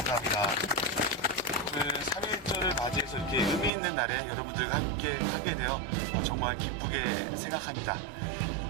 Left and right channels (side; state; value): left; drops out; at 3.7 s